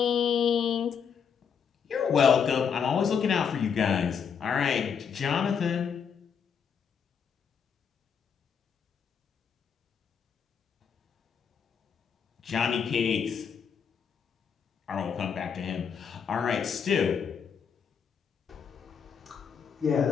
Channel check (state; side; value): quieter; right; 7.0 dB